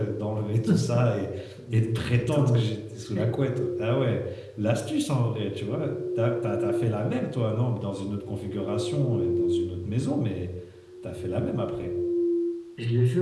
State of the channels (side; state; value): both; identical; correlation 1.00